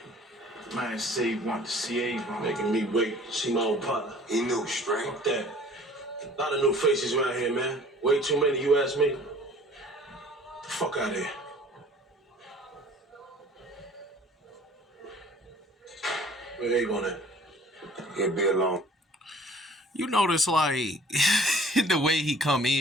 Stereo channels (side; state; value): both; normal; correlation 0.51